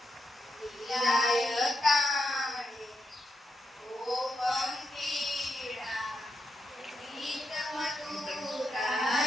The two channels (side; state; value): both; normal; correlation 0.84